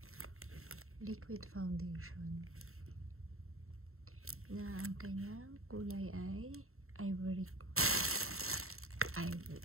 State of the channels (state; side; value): late; left; 0.62 ms